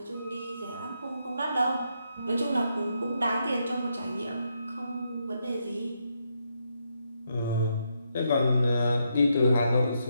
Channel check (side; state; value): both; inverted; correlation -0.79